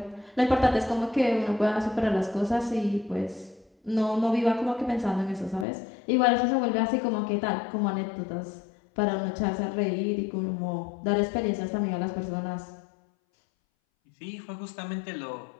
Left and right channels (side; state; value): right; drops out; at 5.7 s